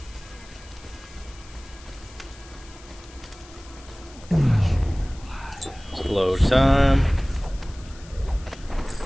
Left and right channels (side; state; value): left; noise; hiss, 22 dB below the sound